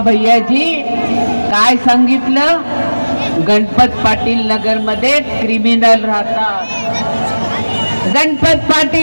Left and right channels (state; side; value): inverted; both; correlation -1.00